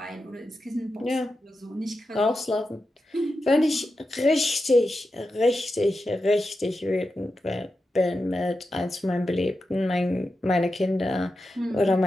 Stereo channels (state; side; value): normal; both; correlation 0.90